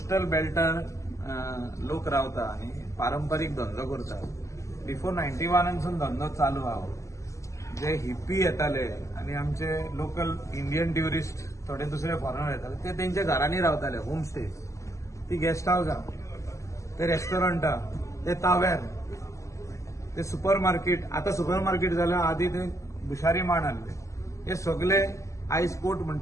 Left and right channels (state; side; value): late; right; 0.15 ms